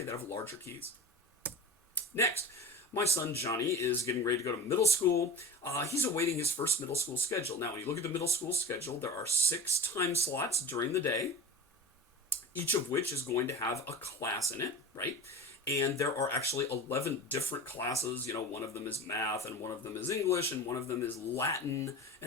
that have larger keys. Next, my son Johnny is getting ready to go to middle school. He's awaiting his first middle school schedule. Now, when you look at the middle school schedule, there are 6 time slots during the day, each of which is going to have a class in it, right? And there are actually 11 different classes. You know, one of them is math, and one of them is English, and one of them is Latin,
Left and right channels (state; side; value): normal; both; correlation 0.32